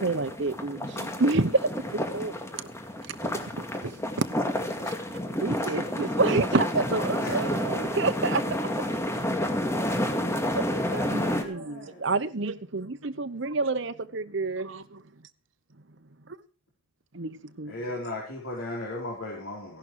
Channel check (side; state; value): both; normal; correlation 0.22